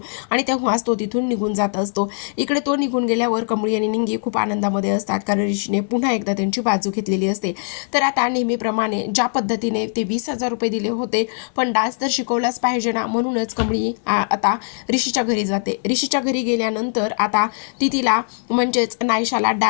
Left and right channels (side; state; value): right; silent; 61 dB below the other